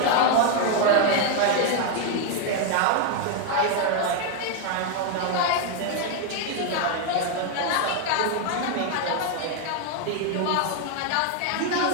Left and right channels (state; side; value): different; both; correlation 0.01